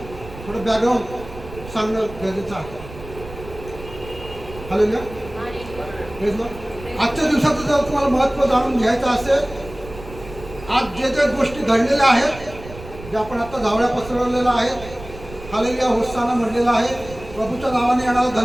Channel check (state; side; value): noise; right; rumble, 15 dB below the sound